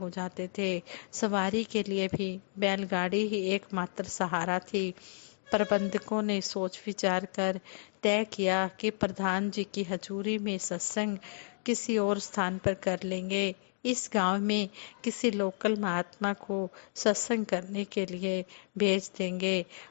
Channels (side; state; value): right; silent; digital silence